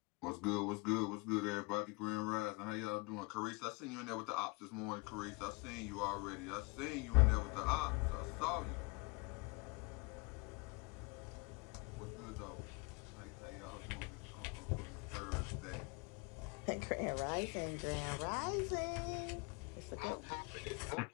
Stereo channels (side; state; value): right; quieter; 29.0 dB